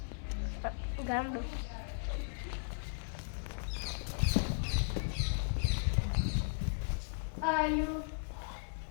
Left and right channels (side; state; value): right; silent; digital silence